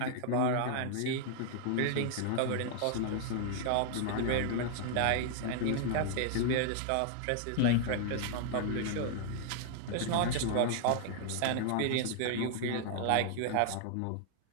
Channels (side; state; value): both; different; correlation 0.00